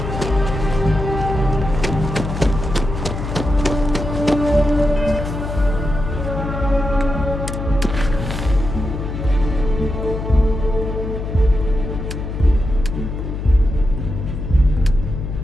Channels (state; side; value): noise; left; hum, 5 dB below the sound